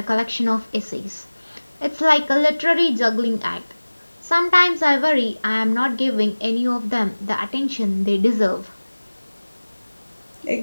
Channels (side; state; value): both; inverted; correlation -1.00